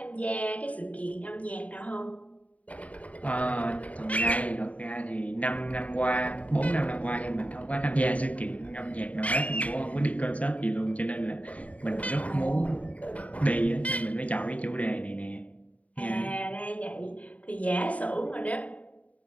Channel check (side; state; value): right; late; 0.068 ms